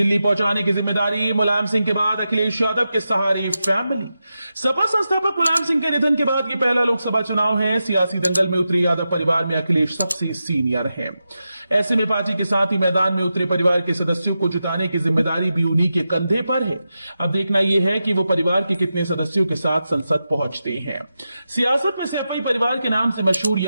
पहुंचाने की जिम्मेदारी मुलायम सिंह के बाद अखिलेश यादव के सहारे फैमिली। सपा संस्थापक मुलायम सिंह के निधन के बाद ये पहला लोकसभा चुनाव है। सियासी दंगल में उतरे यादव परिवार में अखिलेश सबसे सीनियर हैं। ऐसे में पार्टी के साथ ही मैदान में उतरे परिवार के सदस्यों को जुटाने की जिम्मेदारी भी उन्हीं के कंधे पर है। अब देखना यह है कि वो परिवार के कितने सदस्यों के साथ संसद पहुंचते हैं। सियासत में सैफई परिवार के नाम से मशहूर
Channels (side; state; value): both; inverted; correlation -0.90